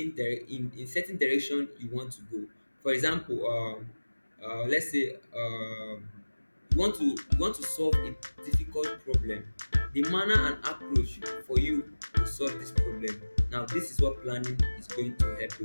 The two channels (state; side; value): inverted; both; correlation -1.00